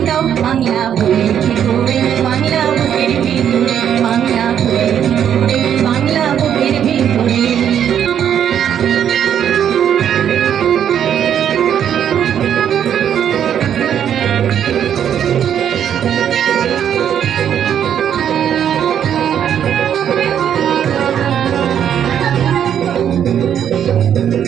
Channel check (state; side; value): quieter; left; 9.2 dB